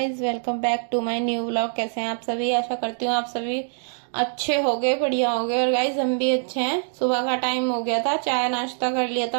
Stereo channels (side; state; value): left; silent; 63 dB below the other